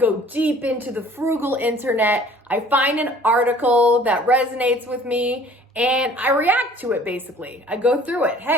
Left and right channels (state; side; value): normal; both; correlation 0.52